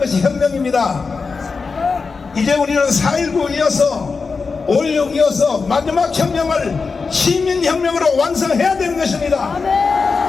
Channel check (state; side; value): quieter; right; 4.7 dB